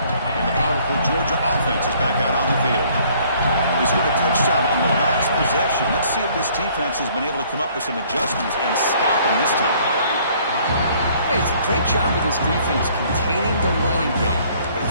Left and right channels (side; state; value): both; inverted; correlation -0.60